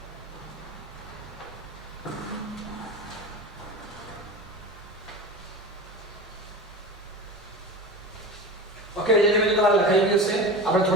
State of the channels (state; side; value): normal; both; correlation 0.30